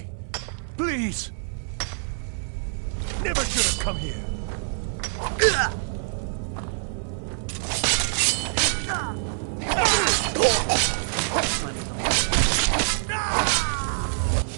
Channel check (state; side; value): silent; left; 61 dB below the other